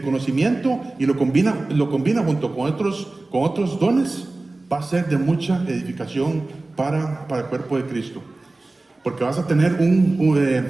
y lo combina junto con otros dones, va a ser de mucha edificación para el cuerpo de Cristo. Porque vas a tener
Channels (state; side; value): quieter; left; 3.1 dB